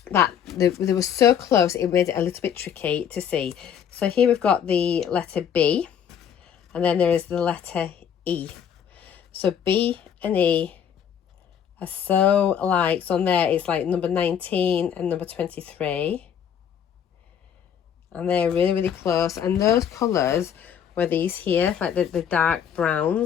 that they were so close, it made it a little bit tricky to see. So here we've got the letter B, and then there is the letter E. So B and E are so alike. So on there it's like number 19 and number 23. And they're really, really close. And those colours were these here, like the dark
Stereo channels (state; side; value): quieter; right; 8.5 dB